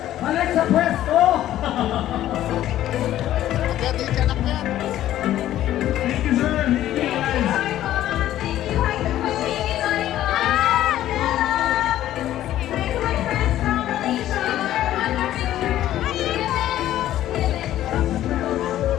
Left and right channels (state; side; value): quieter; right; 13.0 dB